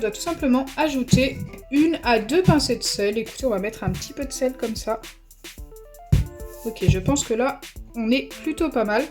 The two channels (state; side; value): identical; both; correlation 1.00